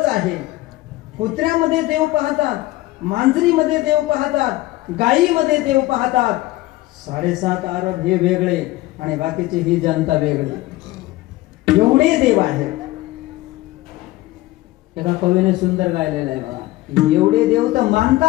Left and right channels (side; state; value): right; quieter; 17.9 dB